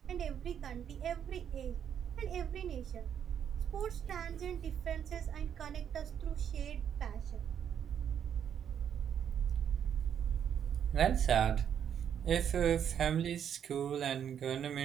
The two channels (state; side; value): quieter; left; 8.7 dB